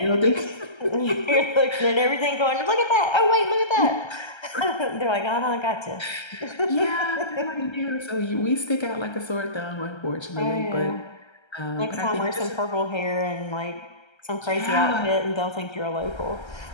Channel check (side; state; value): right; late; 1.3 ms